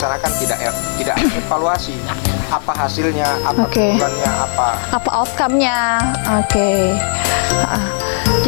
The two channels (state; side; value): silent; right; 69 dB below the other